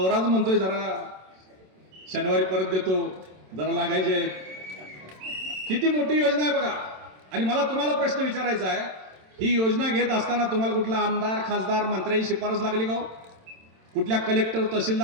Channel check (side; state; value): left; late; 27 ms